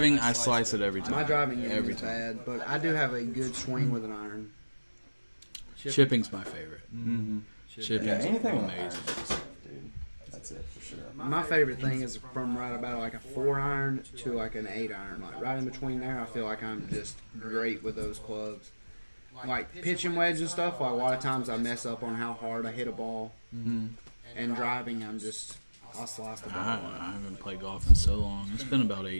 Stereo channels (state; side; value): inverted; both; correlation -1.00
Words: I slice it every time. My driving game every is time. bad, but I do have a good swing with an iron. Chipping's my favorite. Mm-hmm. Chipping's anything with amazing. iron, dude. That's it for sure. My favorite thing is from right about like a 4 iron to like an 8 iron. Like right in between there, I feel like I'm just great with those clubs. Like pitching wedge and stuff, like a lot of times I mess up on how hard I hit a ball. Mm-hmm. And driving, I'll slice the ball. I haven't played golf in so long. It's been about 8